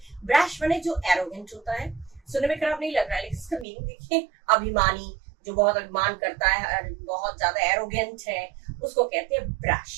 ब्रैश माने जो एरोगेंट होता है, सुनने में खराब नहीं लग रहा है, लेकिन इसका मीनिंग देखिए, अभिमानी, जो बहुत अभिमान करता है, बहुत ज्यादा एरोगेंट है, उसको कहते हैं ब्रैश.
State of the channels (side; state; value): left; drops out; at 3.7 s